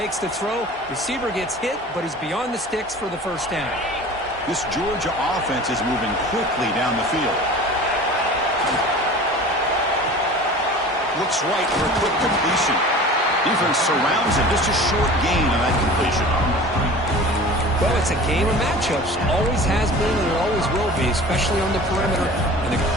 the throw. Receiver gets hit, but is beyond the sticks for the first down. This Georgia offense is moving quickly down the field. Looks right for a quick completion. Defense surrounds him. Just a short gain on that completion. Well, it's a game of matchups. Always has been and it always will be, especially on the perimeter. And the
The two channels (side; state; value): both; normal; correlation 0.40